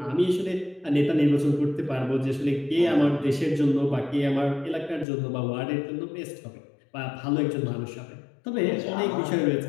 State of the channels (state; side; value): drops out; right; at 5.1 s